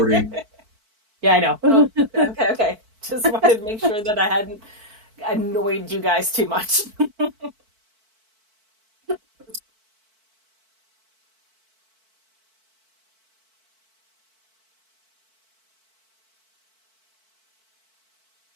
Yeah, I know. Oh, okay. Just wanted to make sure that I hadn't annoyed you guys too much.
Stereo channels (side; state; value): left; late; 4.5 ms